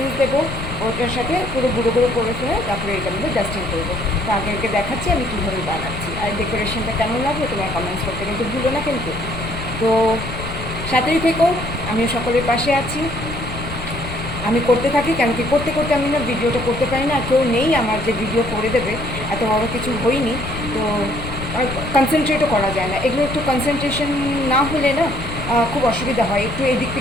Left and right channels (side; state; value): left; noise; rumble, 8 dB below the sound